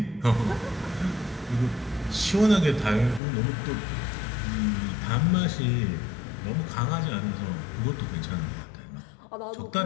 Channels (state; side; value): drops out; right; at 3.2 s